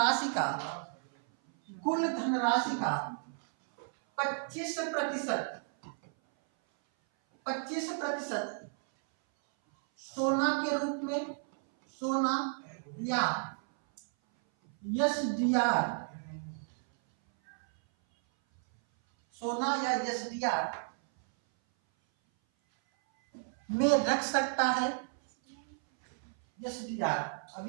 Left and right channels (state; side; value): silent; left; 56 dB below the other